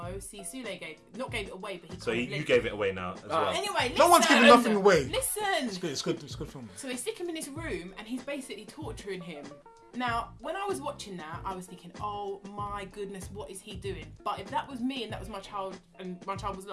See, Sule gave it away, but he. So you gave it away now as well. Anyway, listen. No one's giving nothing away. Listen. It's good film. So they stick him in this room, and he's basically torturing him. Now, when I was watching that, I was thinking, oh my goodness, what is he doing? But if that was me and that was my child, and my child was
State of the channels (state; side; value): identical; both; correlation 1.00